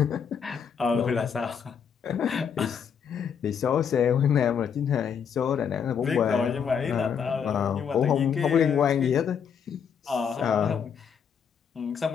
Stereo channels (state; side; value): quieter; right; 7.3 dB